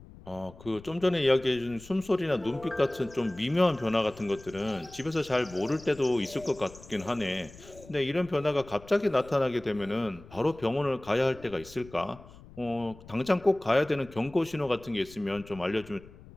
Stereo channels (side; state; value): left; noise; rumble, 20 dB below the sound